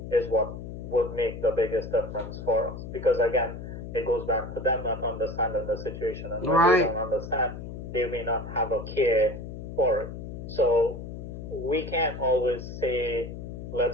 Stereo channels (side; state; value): left; noise; hum, 9 dB below the sound